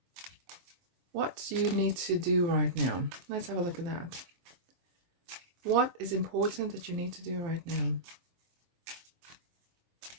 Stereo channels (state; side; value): late; left; 23 ms